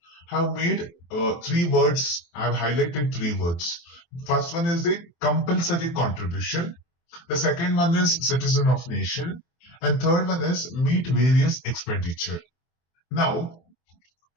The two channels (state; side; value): late; right; 23 ms